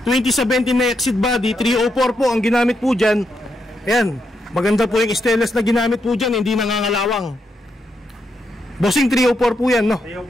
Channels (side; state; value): both; normal; correlation 0.82